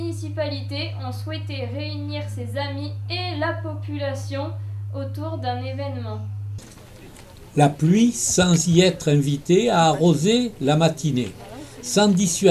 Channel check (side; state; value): both; identical; correlation 1.00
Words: ont souhaité réunir ses amis et la population autour d'un événement. La pluie, sans y être invitée, a arrosé la matinée, sans